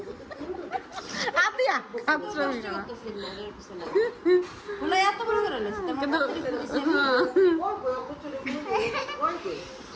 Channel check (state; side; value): identical; both; correlation 1.00